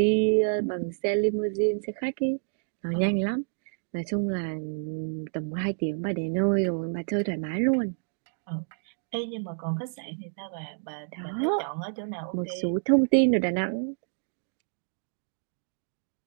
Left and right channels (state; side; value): silent; left; digital silence